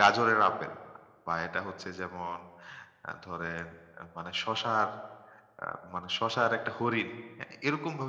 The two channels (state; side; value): identical; both; correlation 1.00